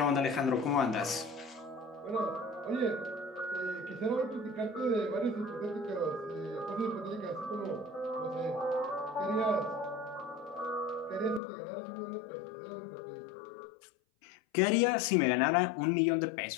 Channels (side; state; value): right; drops out; at 11.4 s